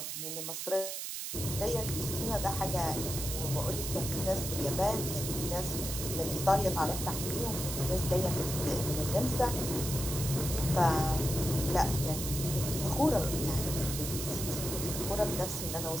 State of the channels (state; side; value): noise; right; hiss, 5 dB below the sound